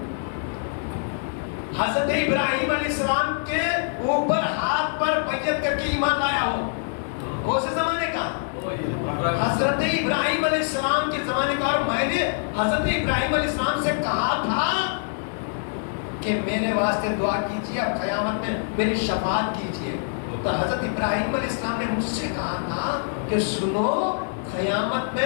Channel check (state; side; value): silent; right; 62 dB below the other